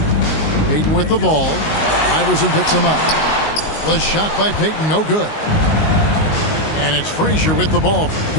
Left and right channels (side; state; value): right; late; 19 ms